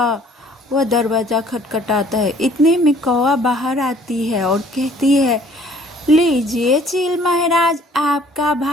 वह दरवाज़ा खटखटाता है। इतने में कौवा बाहर आती है और कहती है, लीजिए चील महाराज, आपका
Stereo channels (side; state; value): both; normal; correlation 0.56